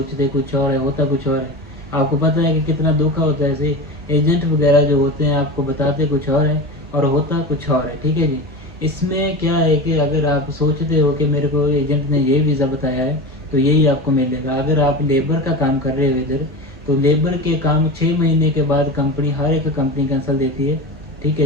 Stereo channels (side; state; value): both; normal; correlation 0.27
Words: कुछ और है, होता कुछ और है। आपको पता है कि कितना धोखा होता है, ऐसे एजेंट वगैरह जो होते हैं आपको बताते कुछ और है और होता कुछ और है, ठीक है जी। इसमें क्या है कि अगर आप सोचते हो कि मेरे को एजेंट ने ये वीज़ा बताया है तो यही आपको मिलेगा। अगर आप लेबर का काम कर रहे हो इधर, तो लेबर के काम 6 महीने के बाद कंपनी, हर एक कंपनी कैंसिल देती है, ठीक